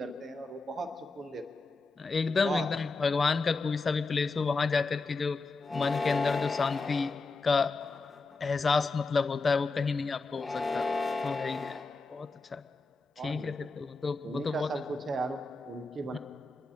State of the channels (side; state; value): right; quieter; 3.7 dB